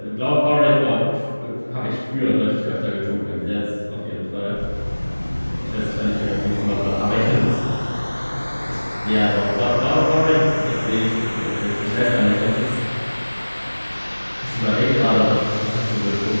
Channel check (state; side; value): inverted; both; correlation -1.00